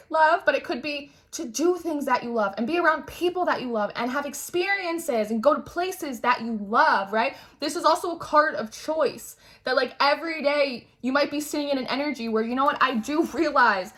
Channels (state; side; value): identical; both; correlation 1.00